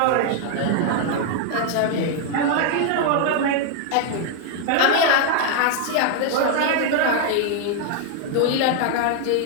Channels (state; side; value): different; both; correlation 0.00